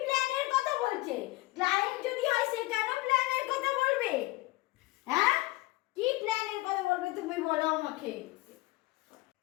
প্ল্যানের কথা বলছে? ক্লায়েন্ট যদি হয় সে কেন প্ল্যানের কথা বলবে? হ্যাঁ, কি প্ল্যানের কথা বলবে তুমি বলো আমাকে।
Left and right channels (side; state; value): right; quieter; 20.9 dB